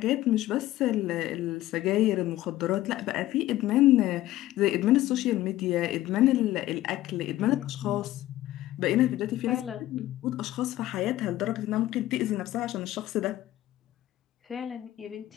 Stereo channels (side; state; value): right; quieter; 15.1 dB